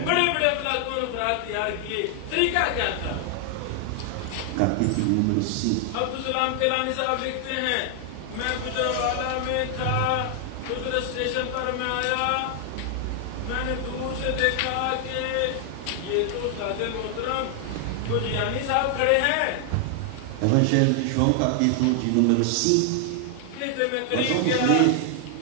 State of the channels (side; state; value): both; different; correlation 0.00